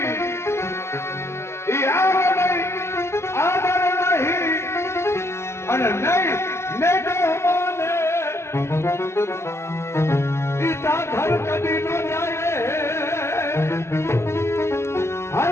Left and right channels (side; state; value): right; late; 0.13 ms